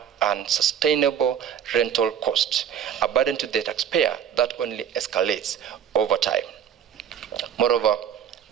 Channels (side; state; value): left; quieter; 8.7 dB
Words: unsustainable rental costs, a burden to the taxpayer that only escalates over time. Moreover,